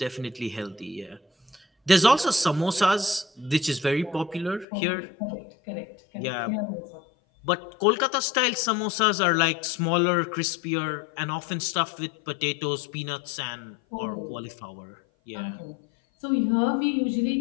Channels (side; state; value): right; drops out; at 4.7 s